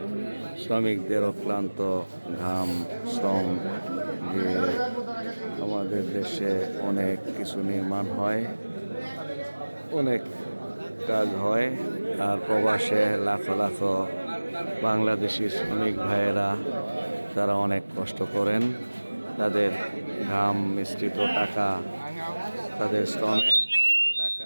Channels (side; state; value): both; inverted; correlation -1.00